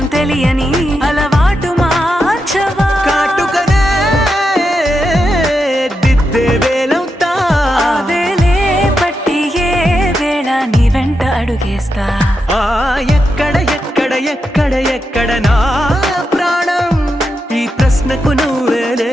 తెలియని అలవాటు మార్చవా. కాటుకనే దిద్దే వేలవుతా, వేలే పట్టి ఏ వేళ నీ వెంట అడుగేస్తా. ఎక్కడ ఎక్కడ ఎక్కడ ఎక్కడ నా ప్రాణం, ఈ ప్రశ్నకు నువ్వేలే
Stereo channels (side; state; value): both; normal; correlation 0.86